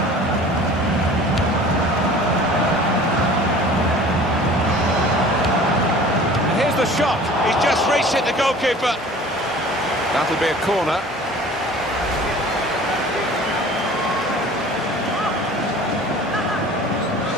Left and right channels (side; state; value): both; normal; correlation 0.45